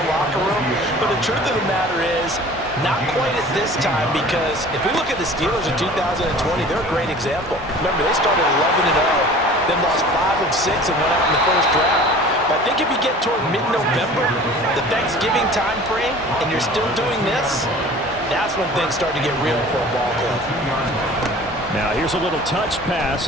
locker room. But the truth of the matter is, not quite at this time, because if we look at the Steelers in 2020, they're a great example. Remember, they started 11-0, then lost 5 of 6 and went out in the first round. But I think if you get toward mid-November, the Thanksgiving time frame, and you're still doing this, that's when things start to get real for a ball club. Now here's a little touch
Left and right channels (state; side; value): normal; both; correlation 0.44